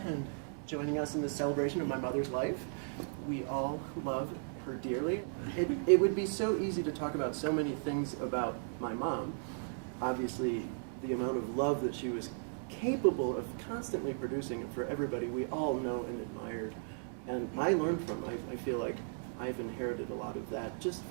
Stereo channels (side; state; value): left; silent; 54 dB below the other